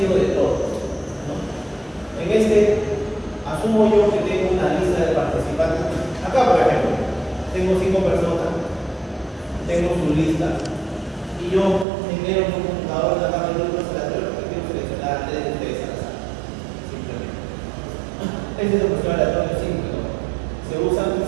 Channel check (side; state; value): left; drops out; at 11.9 s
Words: de todos, ¿no? En asumo yo que tengo una lista de participantes. Acá, por ejemplo, tengo 5 personas, tengo su lista, y yo genero un computador de la grupos aleatorios porque quiero seleccionar a 3 de ustedes al azar. Simplemente. Este es el muestreo aleatorio simple, ¿no? Se usan